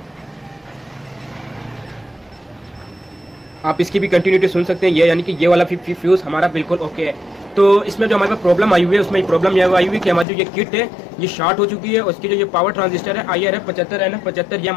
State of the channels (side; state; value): right; drops out; at 10.2 s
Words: आप इसकी भी कंटिन्यूटी सुन सकते हैं, ये यानी कि ये वाला फ्यूज़ हमारा बिल्कुल ओके है। तो इसमें जो हमारे पास प्रॉब्लम आई हुई है उसमें प्रॉब्लम यह आई हुई है कि हमारी जो ये किट है ये शॉर्ट हो चुकी है। उसकी जो ये पावर ट्रांजिस्टर है IRF 75 NF 75 ये